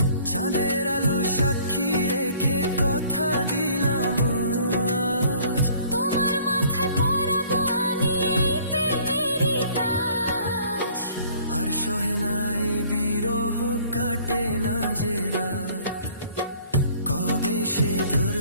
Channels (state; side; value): inverted; both; correlation -0.55